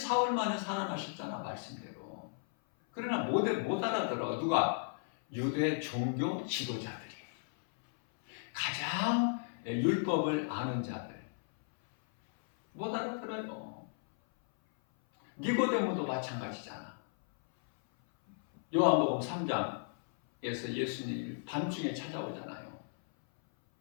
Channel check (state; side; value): silent; right; 54 dB below the other